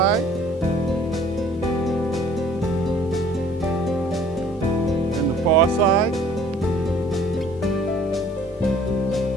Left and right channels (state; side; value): normal; both; correlation 0.55